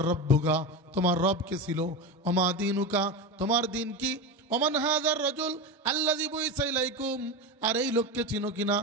রব্বুকা, তোমার রব কে ছিল? ওমা দীনুকা, তোমার দিন কি? ওমান হাযার রাজুল আল্লাযী বুইসা ইলাইকুম, আর এই লোককে চিনো কিনা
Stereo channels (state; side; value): normal; both; correlation 0.21